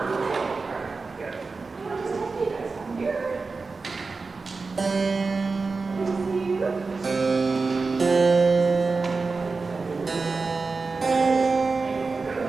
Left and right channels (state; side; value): quieter; left; 4.2 dB